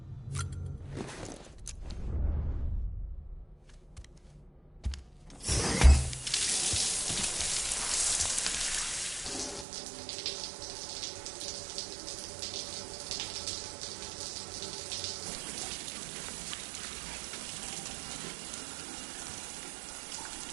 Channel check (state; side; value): drops out; left; at 9.7 s